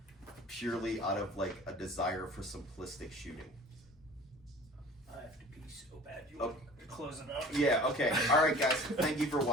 purely out of like a desire for simplistic shooting. I have to pee so bad. You want to close it up? Yeah, okay. All right, guys. Thank you for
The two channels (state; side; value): normal; both; correlation 0.44